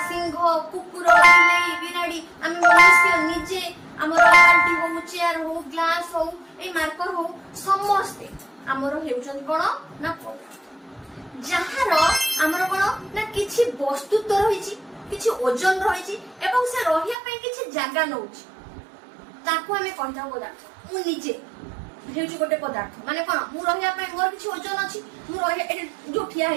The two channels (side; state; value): left; drops out; at 17.2 s